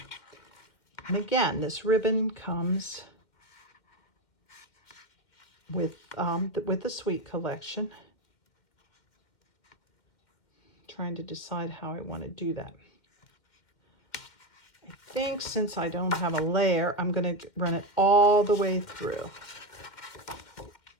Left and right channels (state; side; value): late; right; 2.1 ms